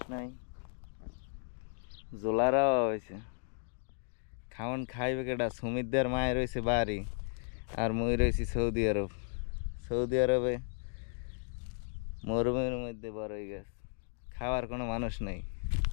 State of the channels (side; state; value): right; silent; 55 dB below the other